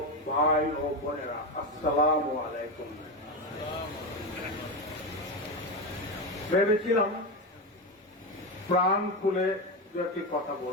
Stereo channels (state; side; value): normal; both; correlation 0.15